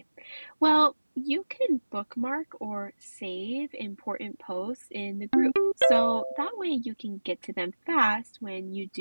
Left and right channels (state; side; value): inverted; both; correlation -1.00